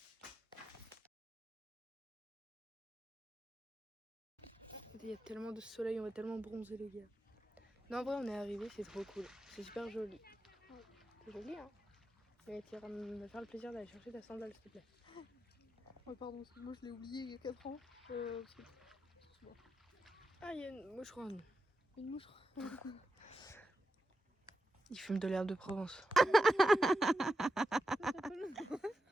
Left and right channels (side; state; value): both; normal; correlation 0.89